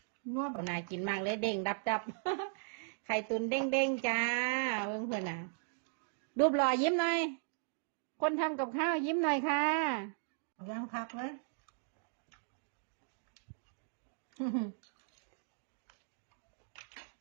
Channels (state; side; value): silent; left; digital silence